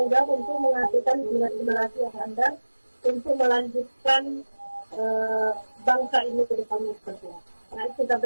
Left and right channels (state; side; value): inverted; both; correlation -1.00